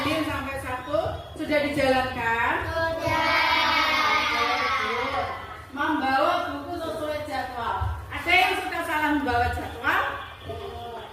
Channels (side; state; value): both; identical; correlation 1.00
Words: sampai Sabtu sudah dijalankan. Membawa buku sesuai jadwal. Ada yang suka salah membawa jadwal?